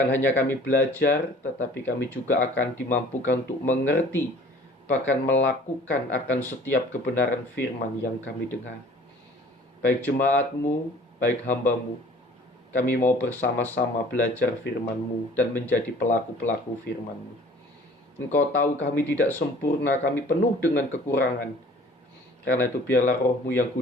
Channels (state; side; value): normal; both; correlation 0.50